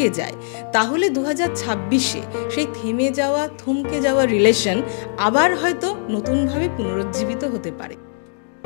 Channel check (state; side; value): silent; right; digital silence